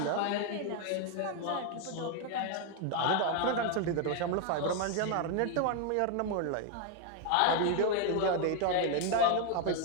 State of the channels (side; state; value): both; different; correlation 0.01